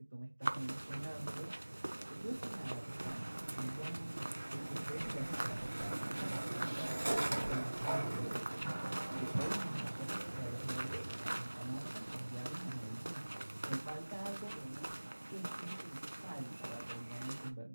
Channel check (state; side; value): inverted; both; correlation -1.00